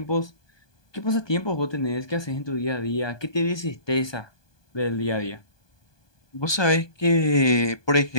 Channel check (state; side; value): late; right; 1.2 ms